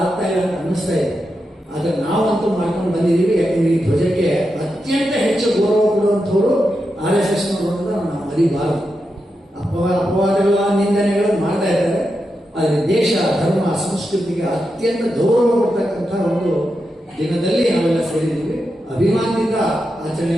ಆಗ್ತಾ ಇಲ್ಲ ಅಂತ ಅನ್ನಿಸ್ತಾ ಇದೆ. ಆದ್ರೆ ನಾವಂತೂ ಮಾಡ್ಕೊಂಡು ಬಂದಿದ್ದೀವಿ. ಯಾಕಂದ್ರೆ ಈ ಧ್ವಜಕ್ಕೆ ಅತ್ಯಂತ ಹೆಚ್ಚು ಗೌರವ ಕೊಡುವಂಥವ್ರು RSS ನೋಡೋದನ್ನ ನಾವು ಮರಿಬಾರದು. ಅಪವಾದಗಳ ನಿಂದನೆಗಳನ್ನು ಮಾಡ್ತಾ ಇದ್ದಾರೆ. ಆದರೆ ದೇಶ, ಧರ್ಮ, ಸಂಸ್ಕೃತಿಗೆ ಅತ್ಯಂತ ಗೌರವ ಕೊಡ್ತಕ್ಕಂಥ ಒಂದು ದಿನದಲ್ಲಿ ನಾವೆಲ್ಲ ಸೇರಿದ್ದೀವಿ. ಅಭಿಮಾನದಿಂದ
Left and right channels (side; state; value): both; normal; correlation 0.87